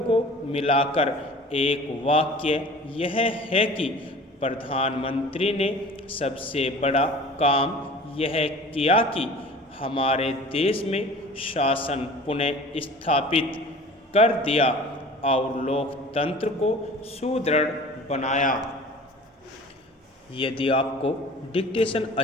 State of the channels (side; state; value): both; normal; correlation 0.42